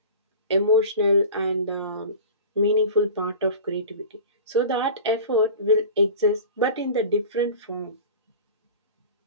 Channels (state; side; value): inverted; both; correlation -0.36